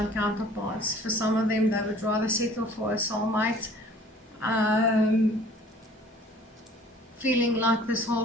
counterparts. For some of them, they would rather settle for a soulmate, feeling like this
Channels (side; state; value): both; normal; correlation 0.51